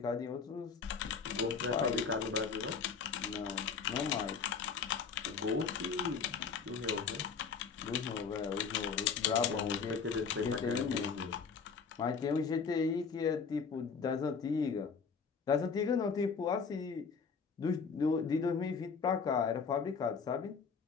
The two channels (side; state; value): right; quieter; 5.7 dB